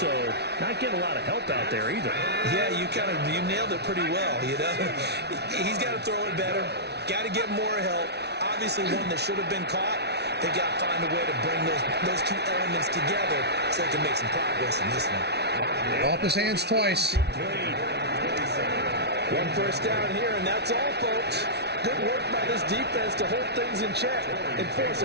not getting a lot of help out there either. Yeah, you nailed it pretty well, you know. He's got to throw it better. Got to get more help. Obviously one that should have been caught. They got to find a way to bring those 2 elements together so they can make some progress in this one. Off his hands twice. One first down here, and that's all, folks. Good work by this defense to hold things in check and force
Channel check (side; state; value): left; late; 0.49 ms